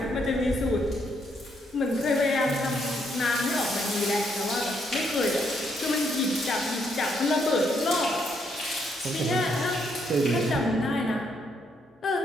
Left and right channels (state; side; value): normal; both; correlation 0.74